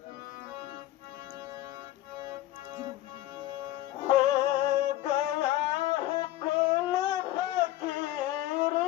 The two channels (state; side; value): quieter; right; 15.0 dB